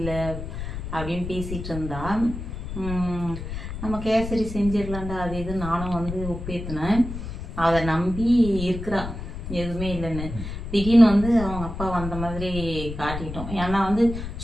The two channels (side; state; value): left; noise; rumble, 7 dB below the sound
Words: அப்படின்னு பேசிகிட்டு இருந்தா. நம்ம கேசரி செஞ்சிடலாண்டா அது இது நானும் வந்து ஒப்பேற்றினேன். அதை நம்பி இருக்கிறா எதுவுமே இல்லைன்னு. திடீர்னு வந்து அவங்க அப்பா வந்த மாதிரி காட்டிட்டோம். ஏன்னா வந்து